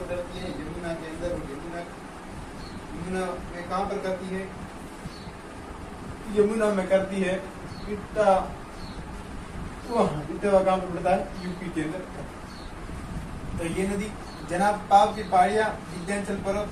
करती है? यमुना के अंदर। और यमुना में कहाँ पर करती है? यमुना में करती है इटावा कहाँ पर पड़ता है? यूपी के अंदर। तो ये नदी जनाब पाव की पहाड़ियां विंध्याचल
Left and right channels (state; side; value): identical; both; correlation 1.00